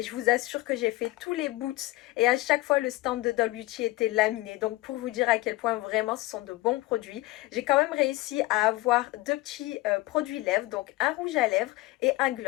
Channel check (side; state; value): right; quieter; 19.5 dB